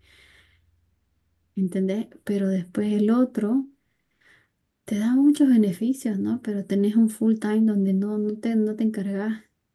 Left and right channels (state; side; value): identical; both; correlation 1.00